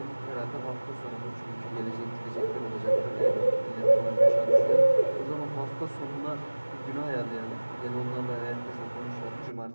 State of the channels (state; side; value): inverted; both; correlation -1.00